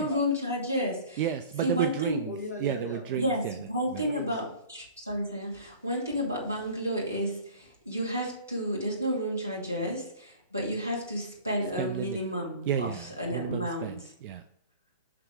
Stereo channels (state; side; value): inverted; both; correlation -0.43